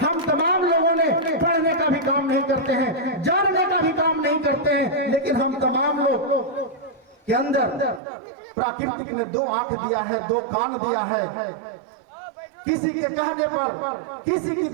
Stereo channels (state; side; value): drops out; left; at 8.0 s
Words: हम तमाम लोगों ने पढ़ने का भी काम नहीं करते हैं, जानने का भी काम नहीं करते हैं, लेकिन हम तमाम लोग के अंदर प्राकृतिक ने 2 आंख दिया है, 2 कान दिया है। किसी के कहने पर, किसी की